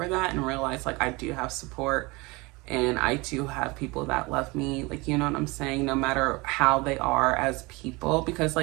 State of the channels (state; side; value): quieter; left; 24.8 dB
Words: that, and realize I do have support, and I do have people that love me, you know what I'm saying, no matter how they are as people. Because